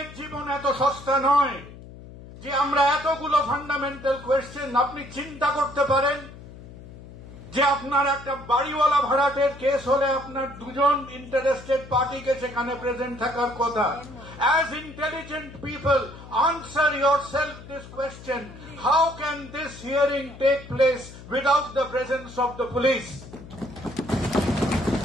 জীবন এত সস্তা নয় যে আমরা এতগুলো ফান্ডামেন্টাল কোয়েশ্চেন। আপনি চিন্তা করতে পারেন যে আপনার একটা বাড়িওয়ালা ভাড়াটের কেস হলে আপনার দুজন ইন্টারেস্টেড পার্টিকে সেখানে প্রেজেন্ট থাকার কথা। As intelligent people, answer yourself this question: how can this hearing take place without the presence of the police?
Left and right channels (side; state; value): left; noise; hum, 16 dB below the sound